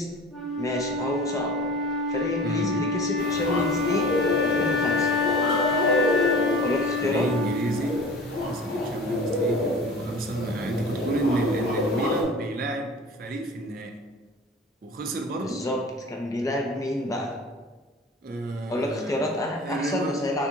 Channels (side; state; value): both; normal; correlation 0.40